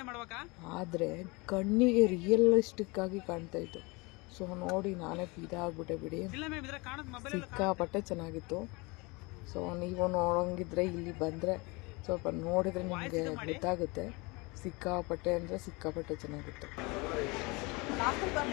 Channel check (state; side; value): quieter; right; 26.3 dB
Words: ಆದರೆ ಕಣ್ಣಿಗೆ ರಿಯಲಿಸ್ಟಿಕ್ ಆಗಿ ಕಾಣ್ತಾ ಇತ್ತು. ಸೊ ನೋಡಿ ನಾನೇ ಇದಾಗ್ಬಿಟ್ಟೆ ಬಿಡಿ, ಸಿಕ್ಕಾಪಟ್ಟೆ ಚೆನ್ನಾಗಿತ್ತು. ಸೊ ನೀವು ನೋಡೋಂಗಿದ್ರೆ ಇಲ್ಲಿ ಬಂದರೆ ಸ್ವಲ್ಪ ನೋಡಿದರೆ ನಿಮಗೆ ಗೊತ್ತಾಗುತ್ತೆ. ಸಿಕ್ಕಾಪಟ್ಟೆ ಅಂದರೆ ಸಿಕ್ಕಾಪಟ್ಟೆ ಚೆನ್ನಾಗಿತ್ತು.